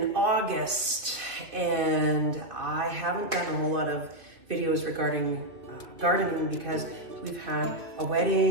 August and I haven't done a whole lot of videos regarding gardening because we've had a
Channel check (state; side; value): late; left; 2.3 ms